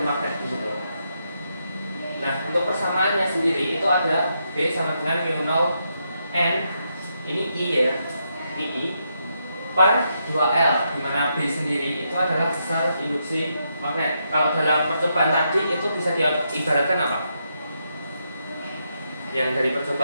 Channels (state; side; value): inverted; both; correlation -0.81